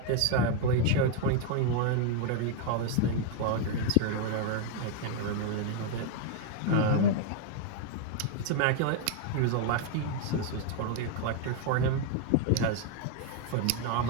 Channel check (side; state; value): both; different; correlation 0.01